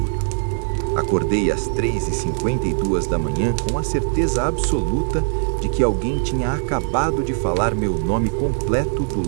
Acordei às 3h52 da manhã com a certeza absoluta de que alguém tinha acabado de falar meu nome completo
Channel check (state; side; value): silent; left; digital silence